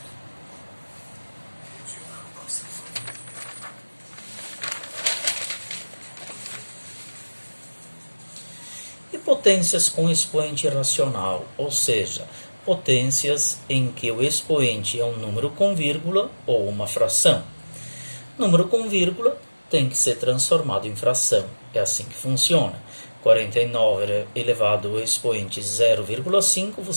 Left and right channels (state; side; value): inverted; both; correlation -1.00